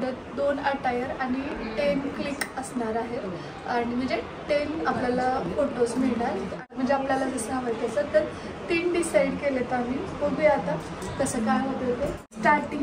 2 अटायर आणि 10 क्लिक असणार आहे. आणि म्हणजे 10 आपल्याला फोटोज मिळणार. म्हणजे आपल्याला जसं हवं तसं. तर 3 डिसाईड केलेत आम्ही. बघूया आता कसं काय होतं ते.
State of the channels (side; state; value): both; identical; correlation 1.00